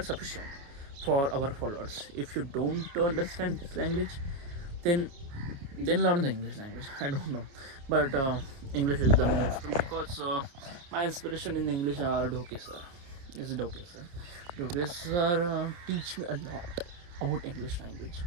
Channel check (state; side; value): late; left; 29 ms